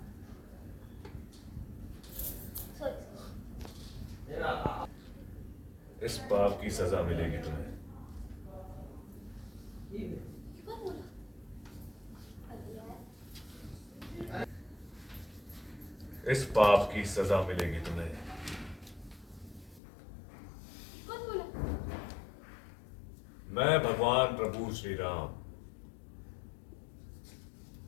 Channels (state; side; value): drops out; right; at 19.8 s